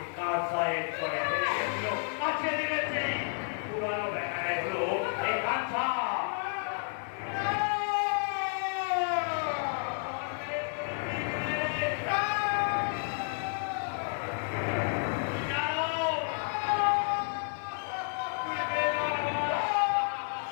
কাঁসায় চড়ে ফেলে গেছিল। আজকে দিয়েছে পুরানো বেটায় হলো এই কাঁসা।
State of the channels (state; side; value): silent; right; 57 dB below the other